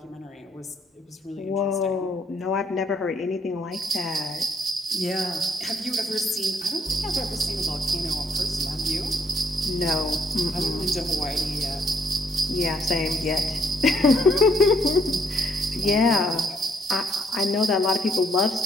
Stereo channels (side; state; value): both; normal; correlation 0.69